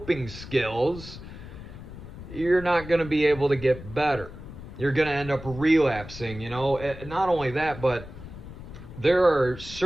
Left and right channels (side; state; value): left; noise; rumble, 13 dB below the sound